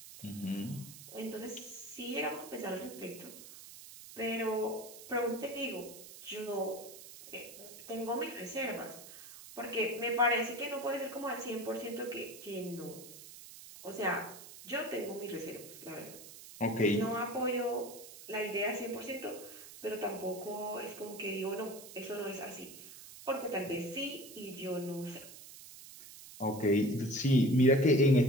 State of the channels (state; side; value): noise; right; hiss, 15 dB below the sound